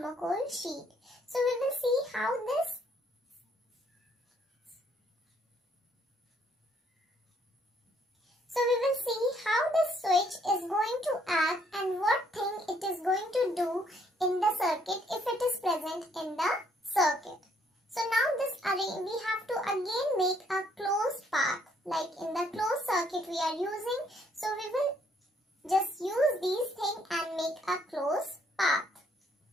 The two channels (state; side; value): normal; both; correlation 0.67